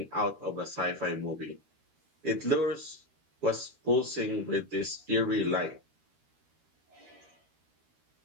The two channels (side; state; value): left; late; 13 ms